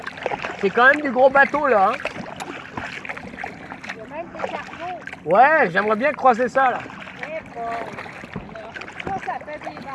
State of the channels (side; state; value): both; identical; correlation 1.00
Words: C'est quand même du gros bateau, là. Hein. Il y a même des cargos. Ouais, j'aimerais bien croiser ça, là. Eh bon. Ça fait des